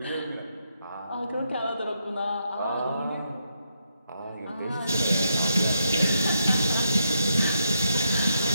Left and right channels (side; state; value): both; inverted; correlation -0.80